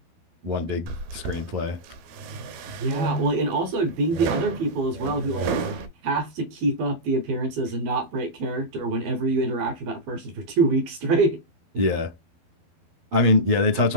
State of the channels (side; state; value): left; late; 12 ms